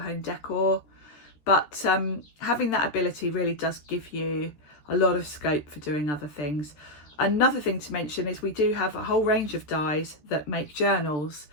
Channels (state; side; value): late; right; 13 ms